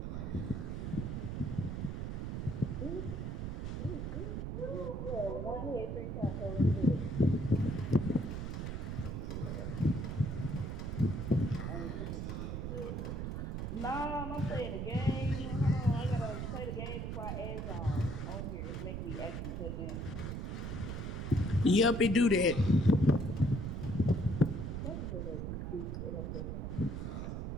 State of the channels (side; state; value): right; noise; rumble, 3 dB below the sound